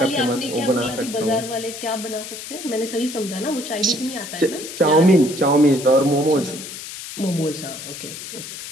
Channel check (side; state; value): left; noise; hiss, 10 dB below the sound